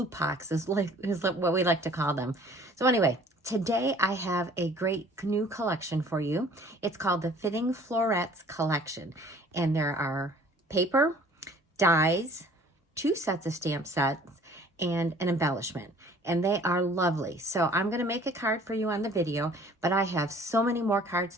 pox is what we like to call them. So anyway, today I have a great new collection for you. It's called the Fitting Florets collection, and there are paper, dies, 2 sets of stamp sets, and an embellishment. And they are lovely. So I'm going to make a card for you on the video, but I have so many more cards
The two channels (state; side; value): normal; both; correlation 0.52